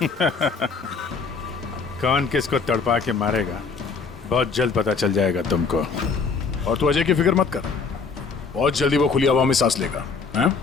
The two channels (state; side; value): quieter; right; 5.0 dB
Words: कौन किसको तड़पा के मारेगा बहुत जल्द पता चल जाएगा तुमको। और तू अजय की फिक्र मत कर, बहुत जल्दी वो खुली हवा में सांस लेगा। हैं?